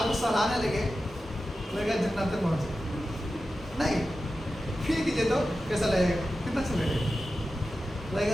को सहलाने लगे, लगेगा जन्नत तक पहुँचे नहीं। फिर कीजिए तो कैसा लगेगा, कितना अच्छा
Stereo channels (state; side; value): normal; both; correlation 0.93